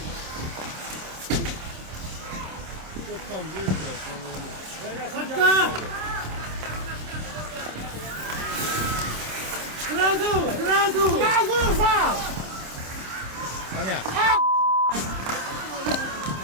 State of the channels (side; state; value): left; late; 26 ms